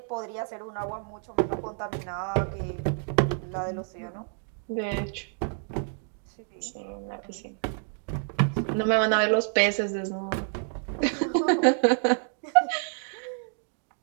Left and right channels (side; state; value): left; silent; 59 dB below the other